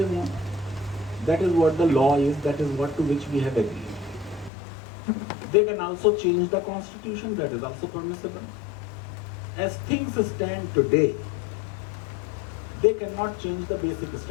want. That is what the law is. That is what to which we have agreed. They can also change the constitution. That is also permissible. As things stand today, they cannot change the basic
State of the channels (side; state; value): right; drops out; at 4.5 s